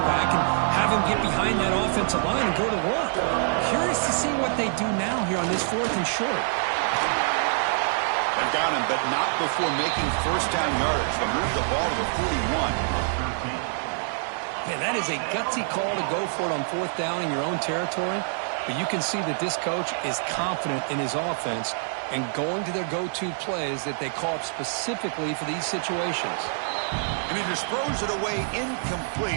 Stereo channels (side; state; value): left; silent; digital silence